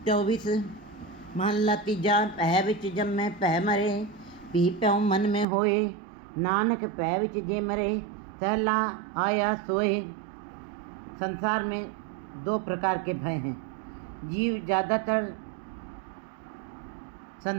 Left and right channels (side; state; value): left; drops out; at 5.5 s